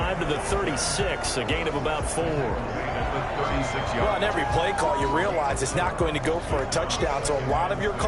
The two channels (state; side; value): identical; both; correlation 1.00